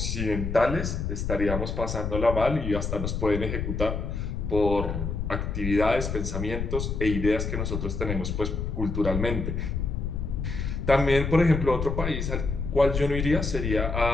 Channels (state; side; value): noise; left; rumble, 3 dB below the sound